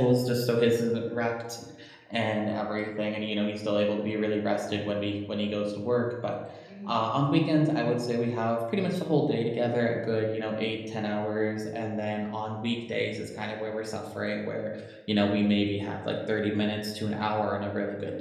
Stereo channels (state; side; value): identical; both; correlation 1.00